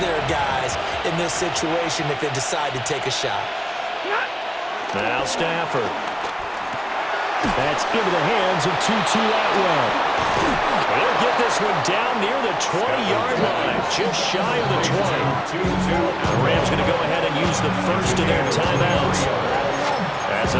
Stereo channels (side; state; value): both; identical; correlation 1.00